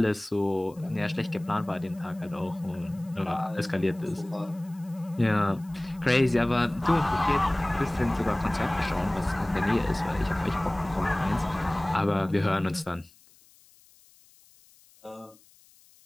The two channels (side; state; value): left; noise; hiss, 28 dB below the sound